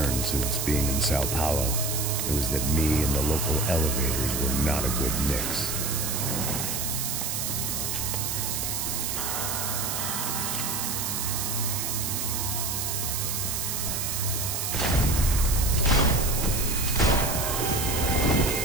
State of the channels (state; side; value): noise; right; hiss, 1 dB below the sound